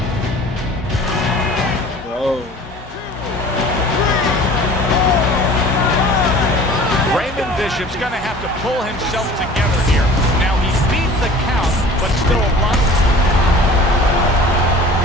Bro. Raymond Bishop's going to have to pull himself together here. Now, he beat the count, but still a lot.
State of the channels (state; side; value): normal; both; correlation 0.45